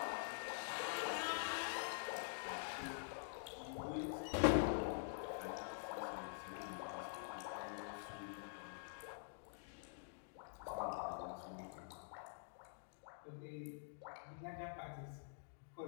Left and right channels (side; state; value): right; silent; digital silence